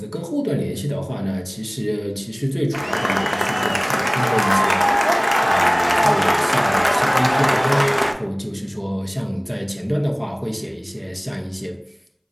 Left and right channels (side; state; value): both; identical; correlation 1.00